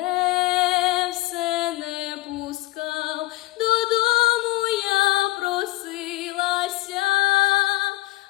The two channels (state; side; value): quieter; right; 19.1 dB